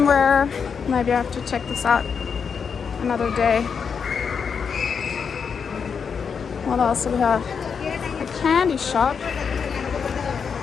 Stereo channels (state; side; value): quieter; right; 6.3 dB